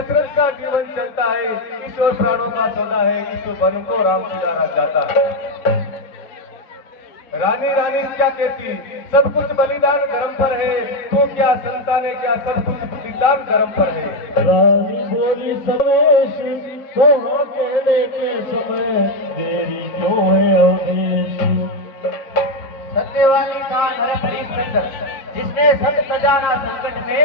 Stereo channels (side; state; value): right; late; 3.7 ms